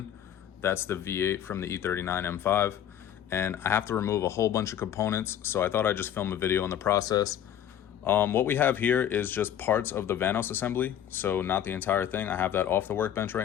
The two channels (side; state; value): right; quieter; 10.3 dB